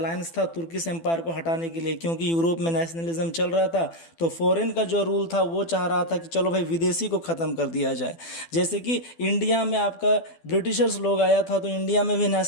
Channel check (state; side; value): late; right; 12 ms